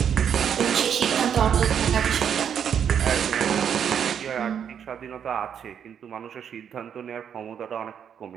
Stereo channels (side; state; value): left; quieter; 8.2 dB